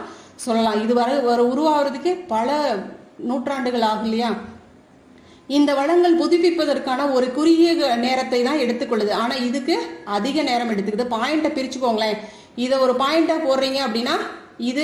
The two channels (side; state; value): both; identical; correlation 1.00